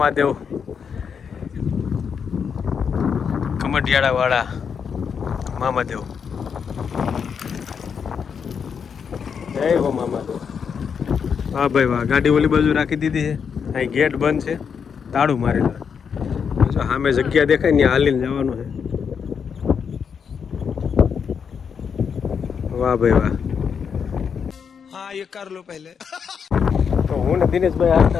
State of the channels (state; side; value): quieter; right; 6.7 dB